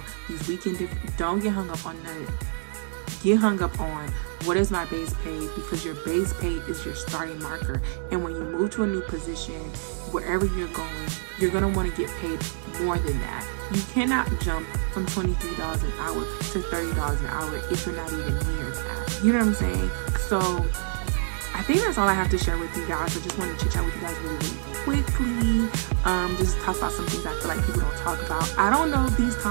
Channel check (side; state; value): left; silent; digital silence